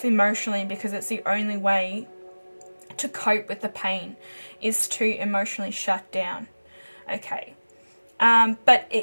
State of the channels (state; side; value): inverted; both; correlation -1.00